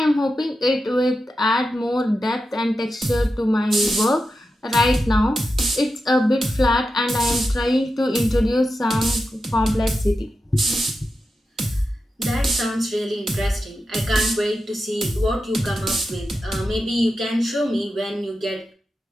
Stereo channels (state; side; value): normal; both; correlation 0.90